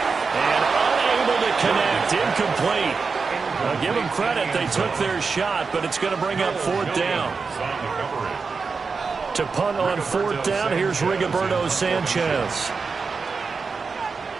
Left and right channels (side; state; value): left; quieter; 4.8 dB